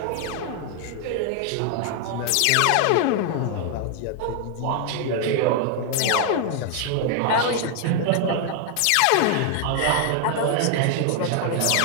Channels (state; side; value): different; both; correlation 0.00